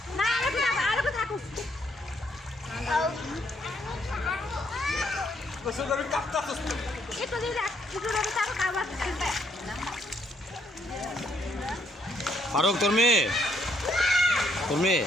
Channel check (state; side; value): normal; both; correlation 0.72